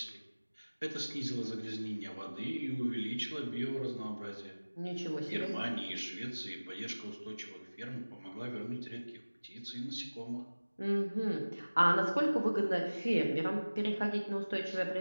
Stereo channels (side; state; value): both; inverted; correlation -1.00